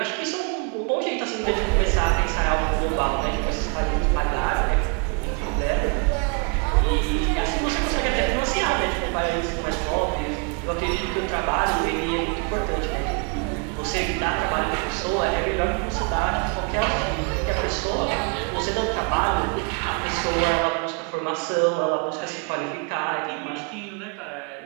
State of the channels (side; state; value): left; quieter; 34.8 dB